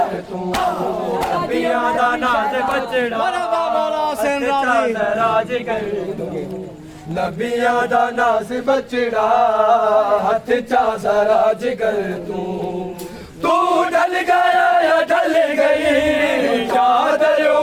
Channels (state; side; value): identical; both; correlation 1.00